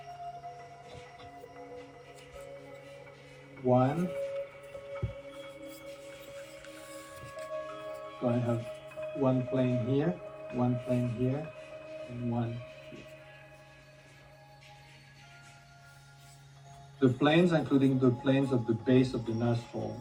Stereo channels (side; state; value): both; identical; correlation 1.00